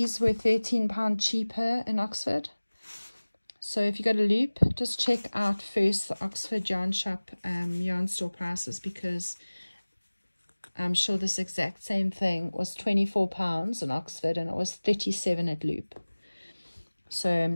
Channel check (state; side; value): inverted; both; correlation -1.00